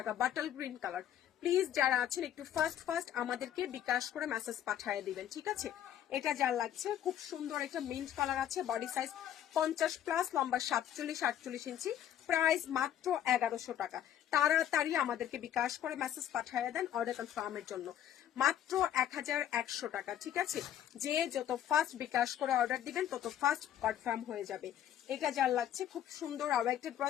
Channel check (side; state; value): right; quieter; 10.9 dB